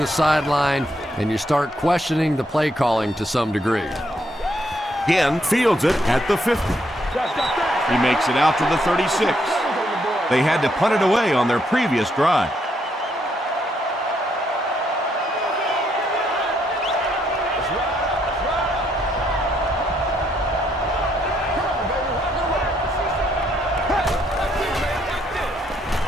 sideline, and you start questioning the play calling to some degree. Again, fields it at the 50. He makes it out to the 36. They had to punt it away on their previous drive.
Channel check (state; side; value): normal; both; correlation 0.74